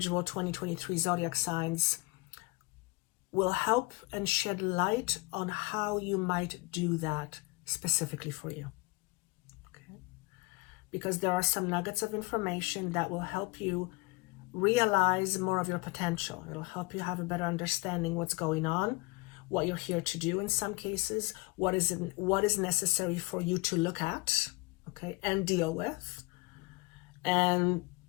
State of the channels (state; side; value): quieter; right; 24.6 dB